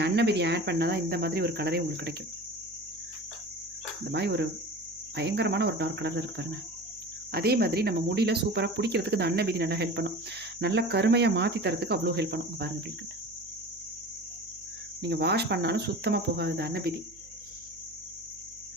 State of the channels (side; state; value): right; noise; hum, 25 dB below the sound